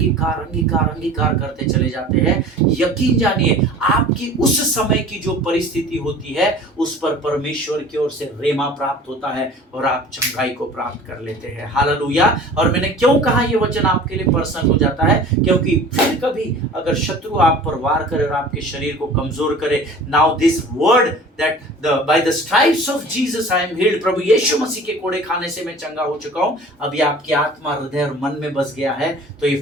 करते चले जाते हैं, यकीन जानिए आपकी उस समय की जो परिस्थिति होती है उस पर परमेश्वर की ओर से रेमा प्राप्त होता है और आप चंगाई को प्राप्त कर लेते हैं। हालेलुया। और मैंने क्यों कहा ये वचन आपके लिए पर्सनल हो जाता है, क्योंकि फिर कभी अगर शत्रु आप पर वार करे और आपके शरीर को कमजोर करे, now this word that by the stripes of Jesus I am healed, प्रभु यीशु मसीह के कोड़े खाने से मैं चंगा हो चुका हूं, अभी आपकी आत्मा, हृदय और मन में बस गया है, तो ये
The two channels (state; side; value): normal; both; correlation 0.43